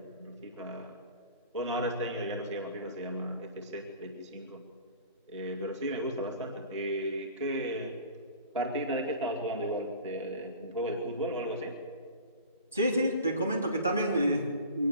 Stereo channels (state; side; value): inverted; both; correlation -0.42